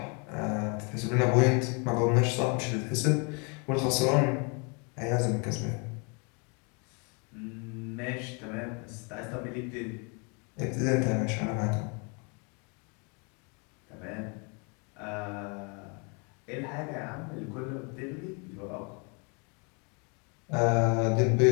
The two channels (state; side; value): quieter; right; 34.1 dB